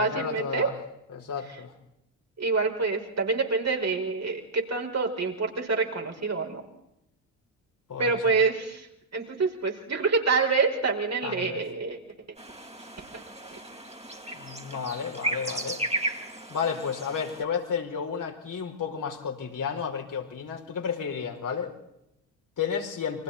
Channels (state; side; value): normal; both; correlation -0.19